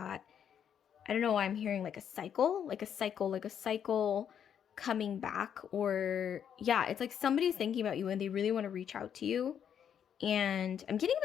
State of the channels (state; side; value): quieter; right; 8.6 dB